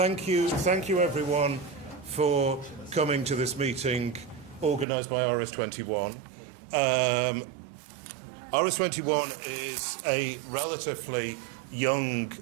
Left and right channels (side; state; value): left; drops out; at 4.9 s